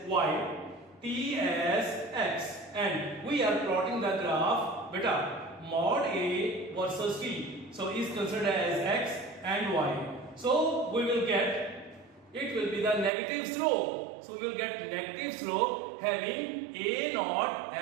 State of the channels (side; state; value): left; drops out; at 13.1 s